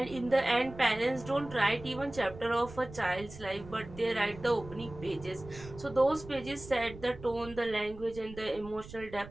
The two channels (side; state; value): right; noise; rumble, 16 dB below the sound